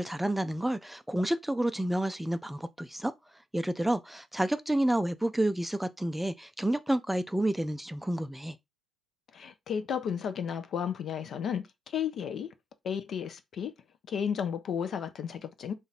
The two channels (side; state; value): both; normal; correlation 0.89